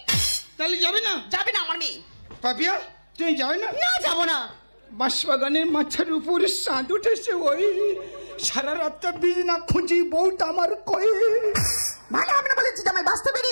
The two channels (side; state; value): both; inverted; correlation -1.00